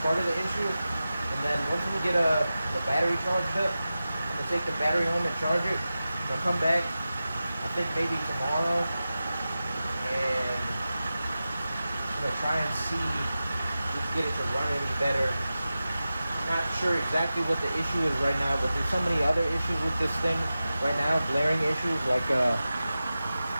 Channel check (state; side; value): inverted; both; correlation -0.94